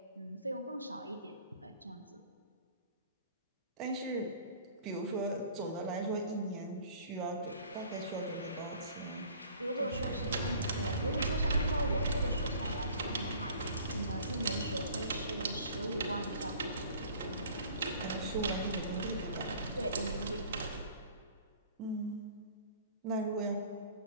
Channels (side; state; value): both; inverted; correlation -0.50